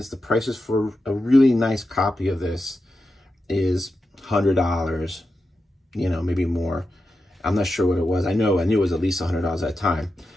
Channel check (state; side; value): normal; both; correlation 0.89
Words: the prices for a really nice copy of this is $100, you know, maybe more. I'm not sure what it was. I knew it was at least $100 at that time.